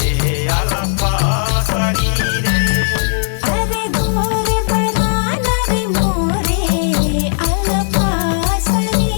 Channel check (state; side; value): silent; right; digital silence